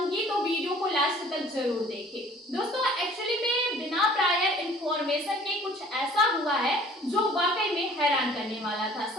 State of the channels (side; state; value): both; normal; correlation 0.51